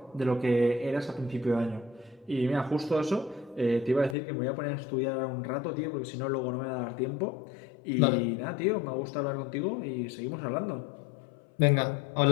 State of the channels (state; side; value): drops out; right; at 4.2 s